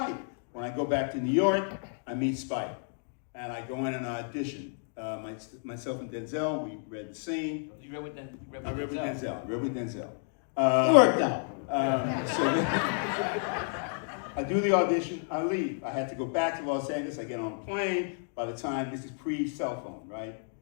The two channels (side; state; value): right; silent; 57 dB below the other